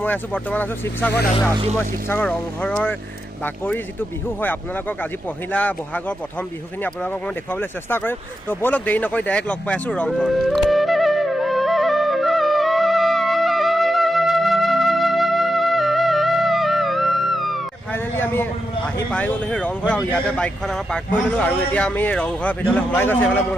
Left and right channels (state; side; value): normal; both; correlation 0.87